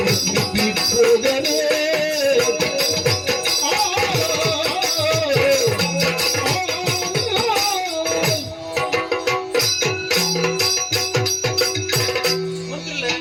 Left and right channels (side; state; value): both; identical; correlation 1.00